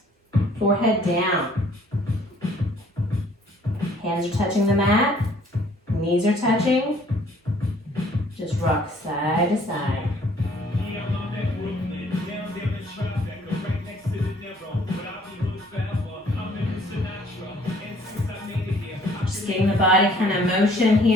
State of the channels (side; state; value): both; normal; correlation 0.59